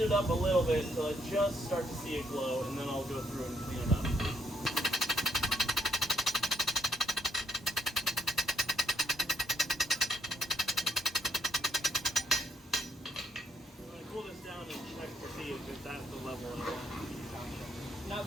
it up a little bit until I just start to see it glow, and then I'll go through and clean it up. I'm going to cool this down and check to see if that's the level I want. Now,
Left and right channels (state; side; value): normal; both; correlation 0.72